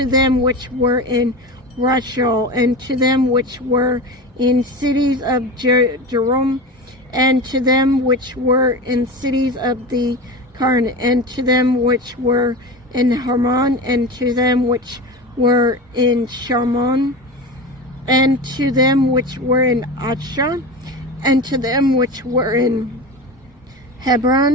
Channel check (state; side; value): normal; both; correlation 0.27